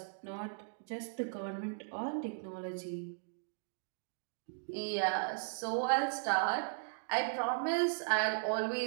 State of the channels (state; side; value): silent; left; digital silence